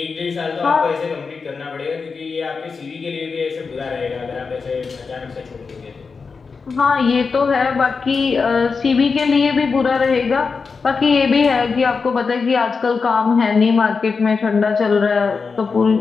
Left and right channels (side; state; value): right; quieter; 4.9 dB